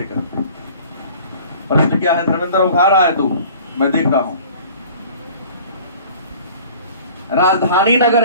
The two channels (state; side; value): inverted; both; correlation -0.47